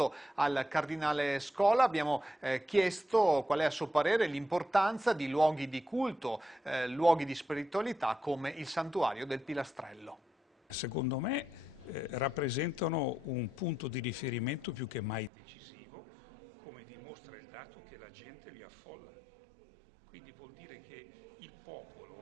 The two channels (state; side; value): drops out; left; at 15.3 s